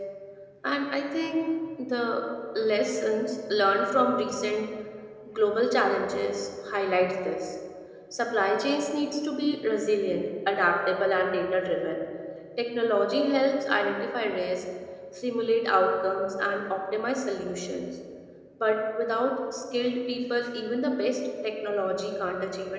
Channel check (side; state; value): both; identical; correlation 1.00